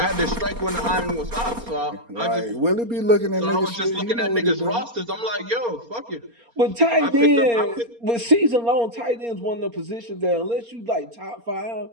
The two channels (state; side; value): late; left; 4.3 ms